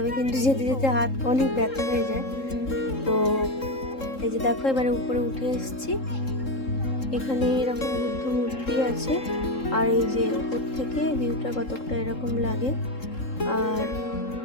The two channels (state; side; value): late; right; 3.7 ms